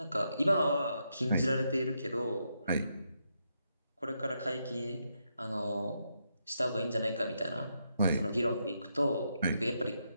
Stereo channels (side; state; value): both; inverted; correlation -0.81